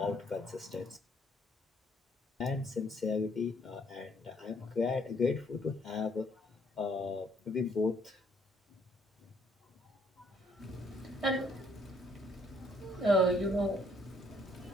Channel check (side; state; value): both; normal; correlation 0.66